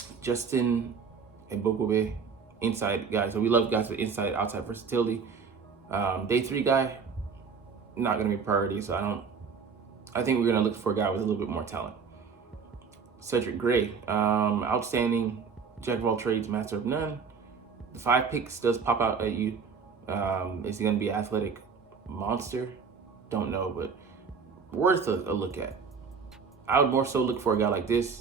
Justin Ebogobe, inside guy. So we love guys with inside, outside versatility. Day 3 guy, not going to be a priority. So I think we're going to look for a guy with a little bit more talent. Cedric Gray, outstanding, jack of all trades, master of none. The 5 picks does pop out at you. Is he going to be an athletic monster? Don't know, but worth a look at. I would more so look for a guy like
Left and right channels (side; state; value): left; quieter; 5.7 dB